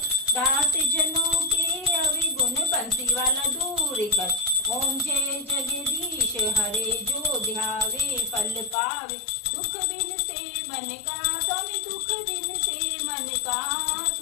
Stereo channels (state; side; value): drops out; right; at 8.8 s